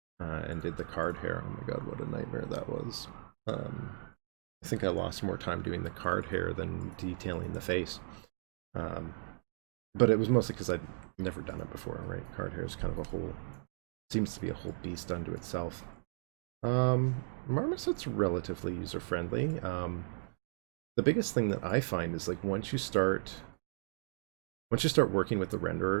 and did the card hair. Oh my god, what a nightmare that was. I think I lost more time doing the card hair than detailing the face. But it was mostly because I'd never done it before, right? Card hair is kind of seems to be a whole beast unto itself. Marmoset's relatively user-friendly. The biggest thing that I find is like once you start working with the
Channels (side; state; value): left; silent; digital silence